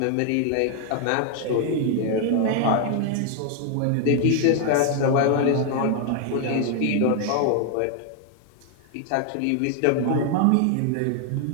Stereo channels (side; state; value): both; different; correlation 0.00